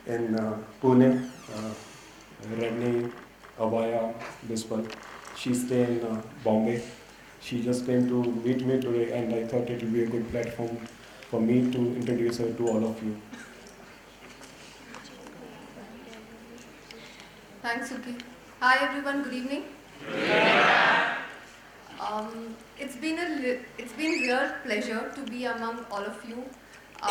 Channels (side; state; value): both; identical; correlation 1.00